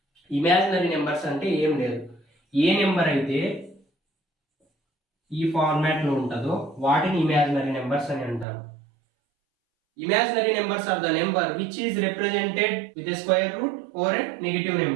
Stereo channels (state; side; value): drops out; left; at 8.5 s